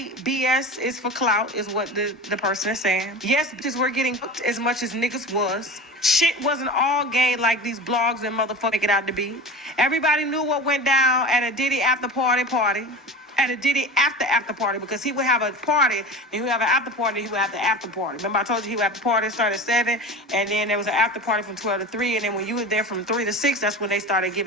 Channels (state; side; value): normal; both; correlation 0.32